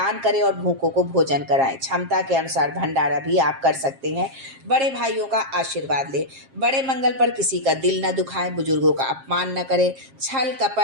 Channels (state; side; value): late; left; 7.5 ms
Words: करें और भूखों को भोजन कराएं। क्षमता के अनुसार भंडारा भी आप कर सकते हैं। बड़े भाइयों का आशीर्वाद लें। बड़े मंगल पर किसी का दिल न दुखाएं, बुजुर्गों का अपमान न करें। छल